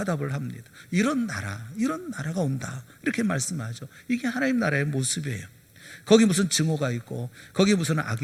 합니다. 이런 나라가 온다, 이렇게 말씀하죠. 이게 하나님 나라의 모습이에요. 거기 무슨 증오가 있고, 거기 무슨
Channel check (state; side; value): identical; both; correlation 1.00